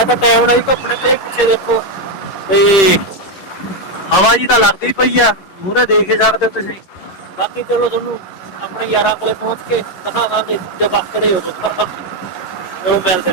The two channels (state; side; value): late; right; 11 ms